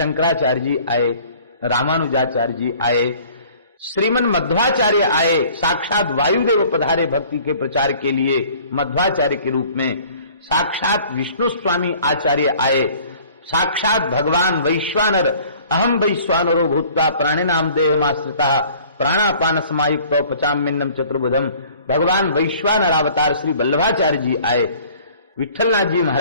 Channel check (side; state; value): both; inverted; correlation -0.52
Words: जी आए, रामानुजाचार्य जी आए, श्रीमन मध्वाचार्य आए, साक्षात वायुदेव पधारे भक्ति के प्रचार के लिए मध्वाचार्य के रूप में, साक्षात विष्णु स्वामी आचार्य आए, साक्षात भगवान वैश्वानर अहम वैश्वानरो भूत्वा प्राणिनाम देहमाश्रिता प्राणापान समायुक्तो पचाम्यन्नम चतुर्भुजम, भगवान वैश्वानर अवतार श्री वल्लभाचार्य जी आए, विठलनाथ जी